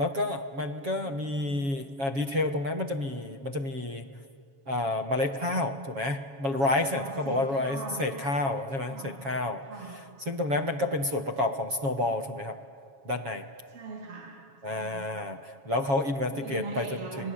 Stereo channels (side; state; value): left; late; 7.3 ms